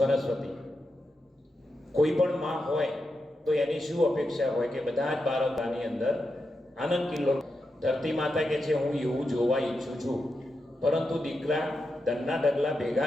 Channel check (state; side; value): normal; both; correlation 0.87